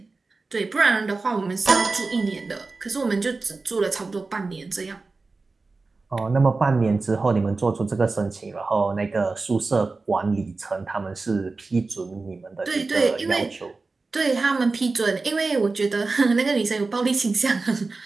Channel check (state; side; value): quieter; left; 3.8 dB